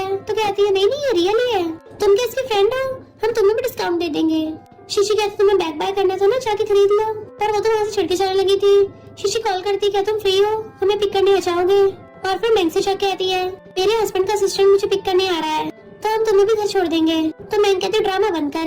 तो कहती है नहीं ये रियल ही है, तुम क्या इसके फ्रेंड हो, हम तुम्हें भी डिस्काउंट दे देंगे। शीशी कहती तुम्हें बैग बाय करना था ना, जाके खरीद लो, पर वो तो वहाँ से छिड़के जाने लगी थी। शीशी कॉल करती क्या तुम फ्री हो, हमें पिक करने आ जाओगे। और फिर मैंग से जाके कहती है मेरे हस्बैंड का असिस्टेंट मुझे पिक करने आ रहा है, तो हम तुम्हें भी घर छोड़ देंगे। तो मैंग कहती ड्रामा बंद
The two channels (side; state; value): both; identical; correlation 1.00